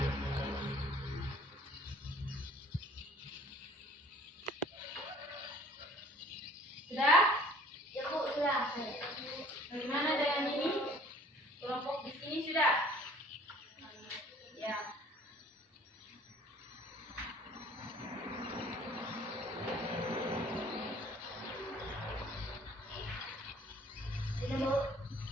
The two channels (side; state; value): both; normal; correlation 0.53